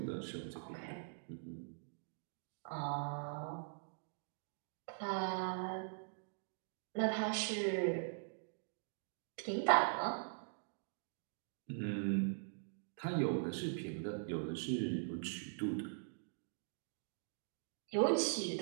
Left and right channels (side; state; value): left; silent; digital silence